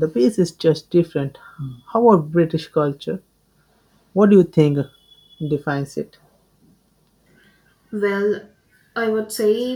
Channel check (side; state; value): both; identical; correlation 1.00